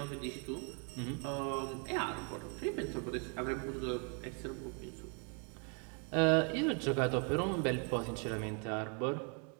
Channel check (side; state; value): left; quieter; 37.0 dB